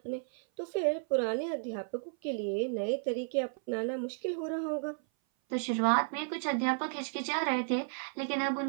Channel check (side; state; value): left; silent; 56 dB below the other